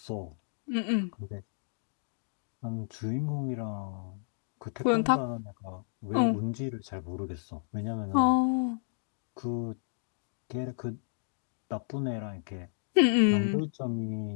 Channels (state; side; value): silent; right; digital silence